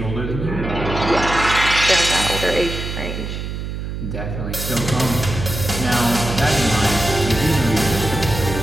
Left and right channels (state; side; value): noise; right; hum, 6 dB below the sound